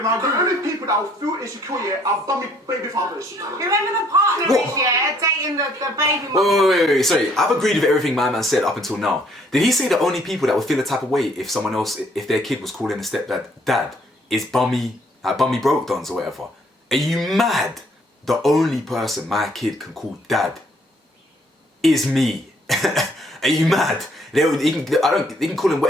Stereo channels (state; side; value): normal; both; correlation 0.64